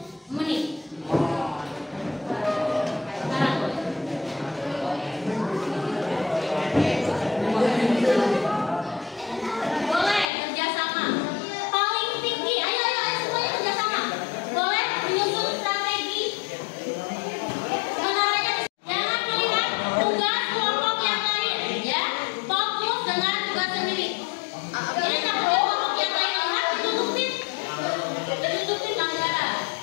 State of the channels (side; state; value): right; drops out; at 10.2 s